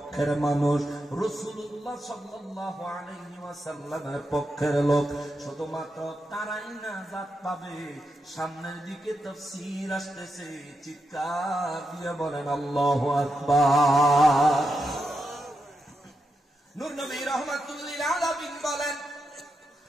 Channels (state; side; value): normal; both; correlation 0.86